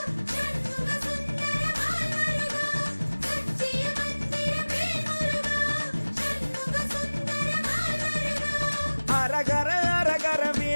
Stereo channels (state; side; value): inverted; both; correlation -1.00